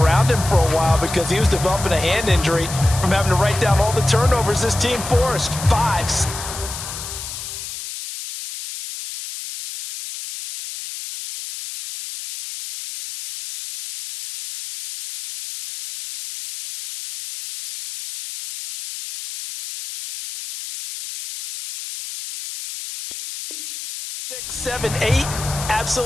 him for a while because he was developing a hand injury from having to write down all the turnovers this team forced. 5. Six, 7, 8,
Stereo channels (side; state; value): left; noise; hiss, 9 dB below the sound